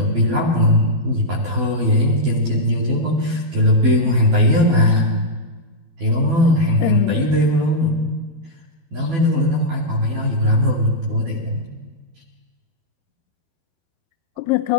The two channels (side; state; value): left; late; 12 ms